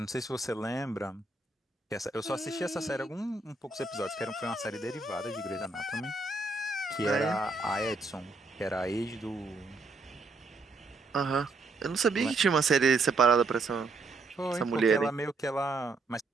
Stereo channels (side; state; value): left; quieter; 3.5 dB